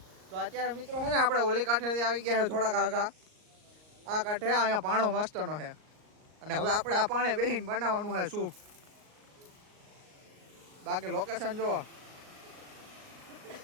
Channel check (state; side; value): late; left; 38 ms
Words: તો અત્યારે મિત્રો છે ને આપણે ઓલી કાંઠેથી આવી ગયા છે થોડાક આગા. આ કાંઠે અહીંયા પાણો મસ્તનો છે. અને હવે આપણે આ પાણે બેસીને બનાવવાનું છે સૂપ. બાકી લોકેશન જુઓ.